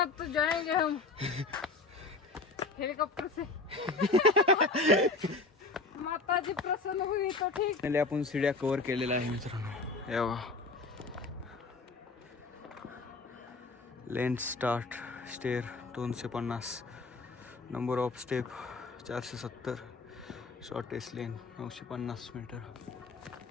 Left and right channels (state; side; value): quieter; right; 3.6 dB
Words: तो जाएंगे हम हेलीकॉप्टर से. माता जी प्रसन्न हुई तो ठीक. पहिले आपण सीड्या कव्हर केलेल्या आहे मित्रांनो. हे बघा, length start stair 250, number of step 470, shortest lane 950 metre.